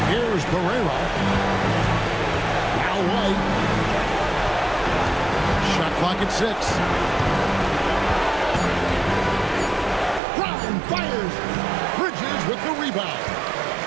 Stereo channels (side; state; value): left; drops out; at 10.2 s